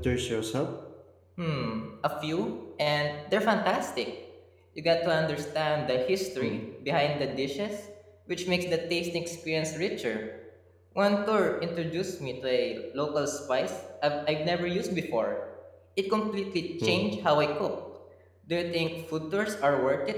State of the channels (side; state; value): both; identical; correlation 1.00